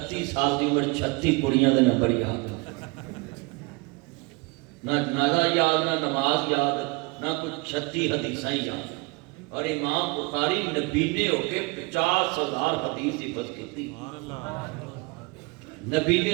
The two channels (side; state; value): left; quieter; 27.3 dB